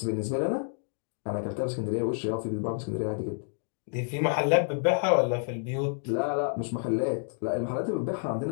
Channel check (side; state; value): right; silent; 58 dB below the other